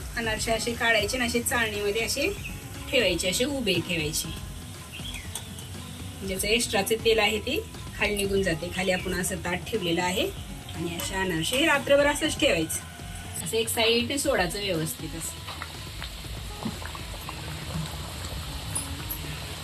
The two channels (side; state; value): both; identical; correlation 1.00